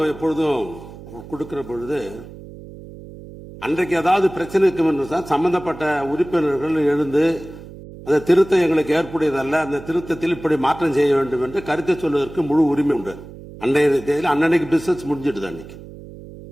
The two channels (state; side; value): noise; right; hum, 16 dB below the sound